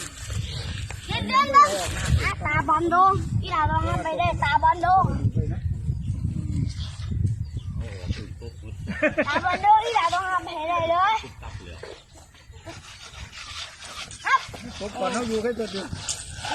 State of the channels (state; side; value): identical; both; correlation 1.00